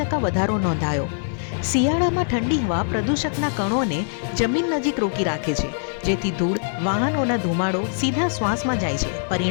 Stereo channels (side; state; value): right; silent; 62 dB below the other